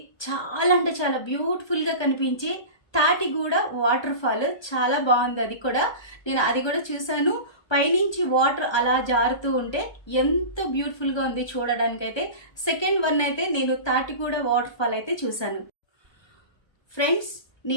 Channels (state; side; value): late; right; 1.2 ms